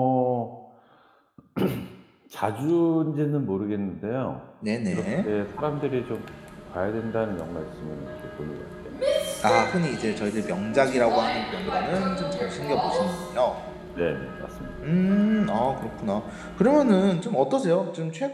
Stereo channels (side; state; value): both; identical; correlation 1.00